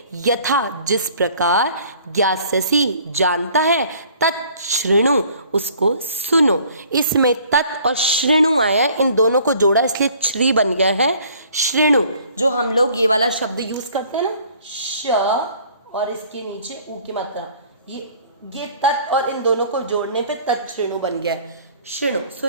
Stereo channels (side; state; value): both; inverted; correlation -0.55